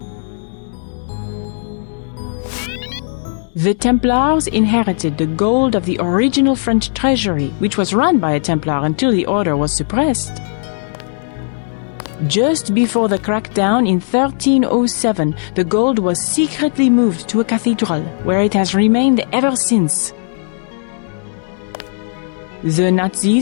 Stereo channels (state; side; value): silent; right; digital silence